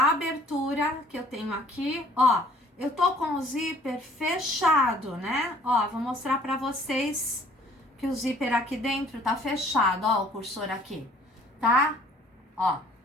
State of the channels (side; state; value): both; normal; correlation 0.56